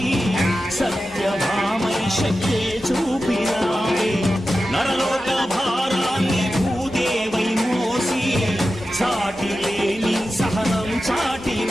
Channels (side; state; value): both; normal; correlation 0.93